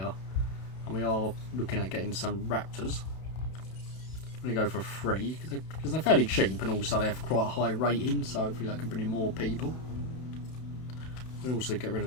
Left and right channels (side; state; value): right; late; 32 ms